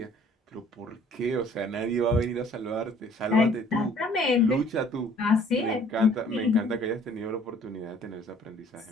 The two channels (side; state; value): both; normal; correlation 0.56